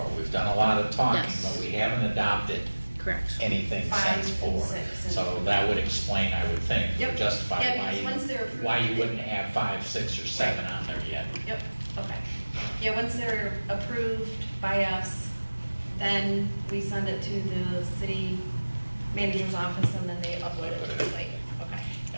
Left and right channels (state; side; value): inverted; both; correlation -1.00